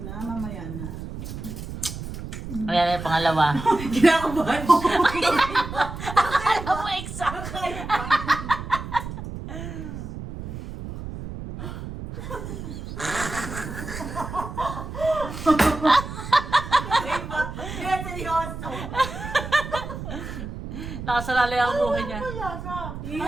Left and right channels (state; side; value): noise; right; rumble, 8 dB below the sound